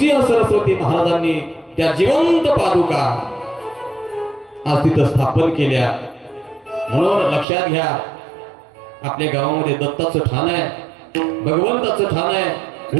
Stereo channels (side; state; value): left; drops out; at 7.5 s